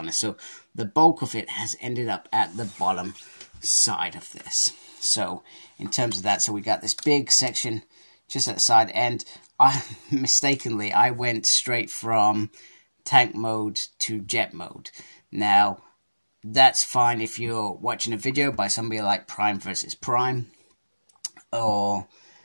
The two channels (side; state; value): both; inverted; correlation -1.00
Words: So the bulk of it has ended up at the bottom side of this. So in terms of that, so we got this big section just at the side, and I mistakenly went straight from tank mode to jet mode. Now that's fine if you're watching a video by somebody like Prime versus Prime, or